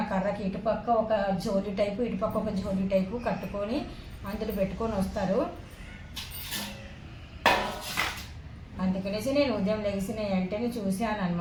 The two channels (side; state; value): both; identical; correlation 1.00